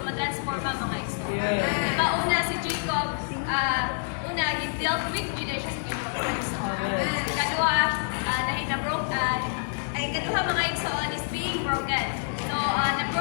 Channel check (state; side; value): silent; right; 60 dB below the other